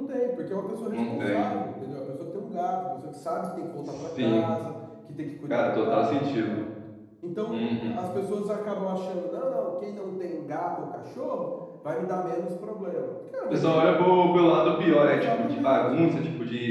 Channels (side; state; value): both; identical; correlation 1.00